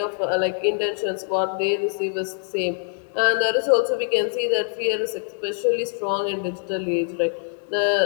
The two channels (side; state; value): right; silent; digital silence